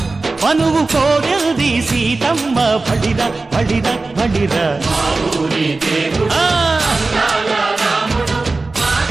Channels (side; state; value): left; quieter; 3.5 dB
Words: మనువు కోరింది సీతమ్మ బడిర బడిర బడిర.